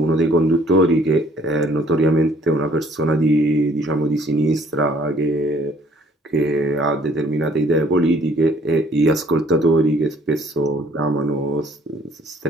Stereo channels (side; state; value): both; normal; correlation 0.60